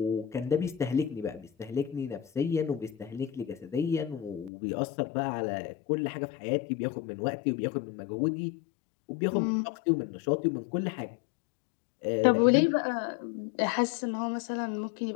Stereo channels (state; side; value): drops out; right; at 4.5 s